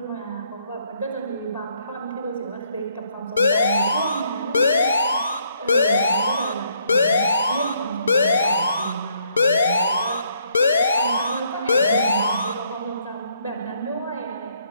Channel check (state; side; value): inverted; both; correlation -0.70